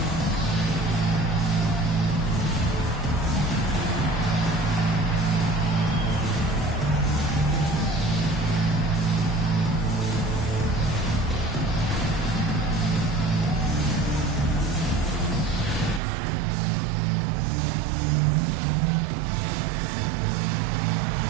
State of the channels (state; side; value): drops out; left; at 16.0 s